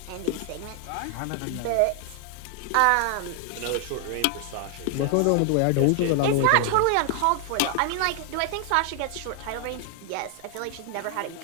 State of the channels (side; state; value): both; different; correlation 0.00